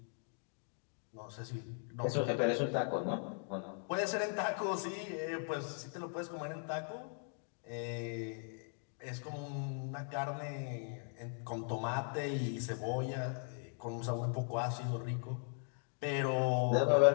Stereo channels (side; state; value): right; silent; 52 dB below the other